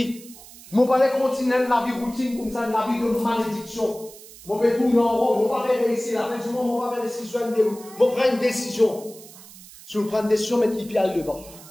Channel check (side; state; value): right; noise; hiss, 19 dB below the sound